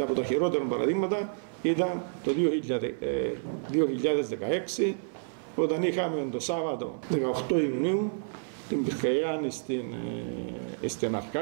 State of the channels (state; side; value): silent; left; 58 dB below the other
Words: τα χειρότερα παραδείγματα ήταν το 2016, όταν είχαμε το Σάββατο 18 Ιουνίου την πυρκαγιά στην